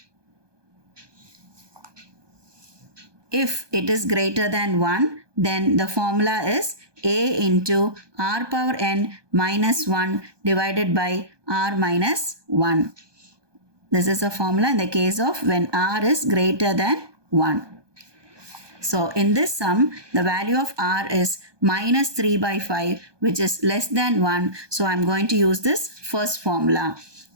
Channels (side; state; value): left; late; 1.2 ms